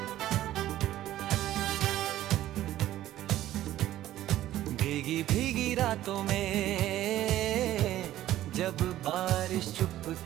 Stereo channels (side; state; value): left; quieter; 13.7 dB